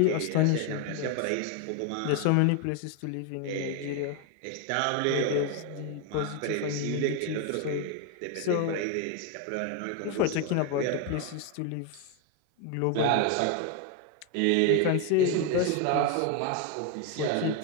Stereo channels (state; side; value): different; both; correlation 0.01